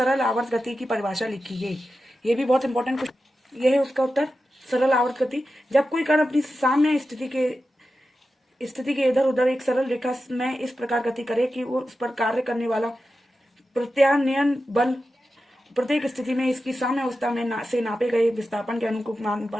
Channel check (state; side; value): normal; both; correlation 0.91